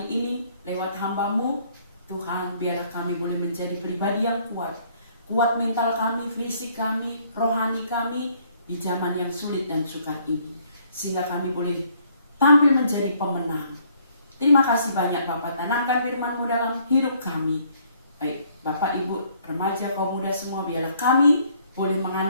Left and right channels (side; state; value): both; inverted; correlation -0.64